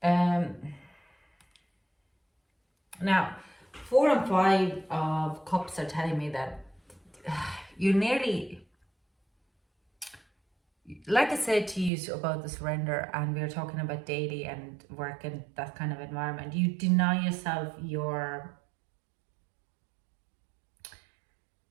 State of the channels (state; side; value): drops out; left; at 11.9 s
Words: Yeah. Now, 4 and 5 of Cups are telling me that you nearly, like I said to you about the surrender, and we were talking about daily and work and that kind of environment, you deny yourself